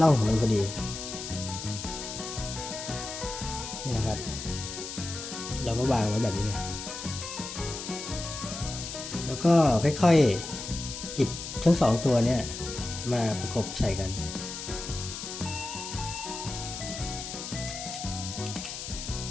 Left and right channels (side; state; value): left; noise; hiss, 8 dB below the sound